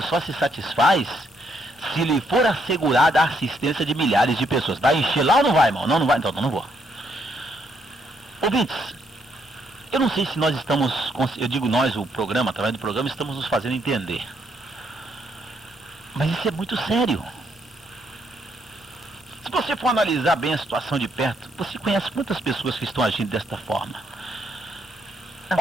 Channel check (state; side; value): normal; both; correlation 0.74